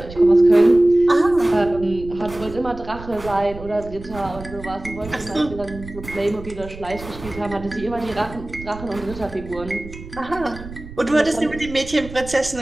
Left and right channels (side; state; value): right; noise; rumble, 14 dB below the sound